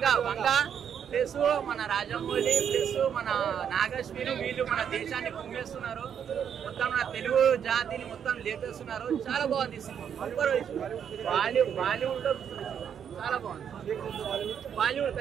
వంగ ప్లస్ మన రాజమౌళి ప్లస్ మన నాగశ్విని వీళ్ళు మన దేశాన్ని కుమ్మేస్తున్నారు. మొత్తం మన తెలుగు జాతిని మొత్తం లేపేస్తున్నారు. చాలా బాగుంది సినిమా. బాలీవుడ్ లో చాలా బాగుంది. బాలీవుడ్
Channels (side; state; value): left; quieter; 8.2 dB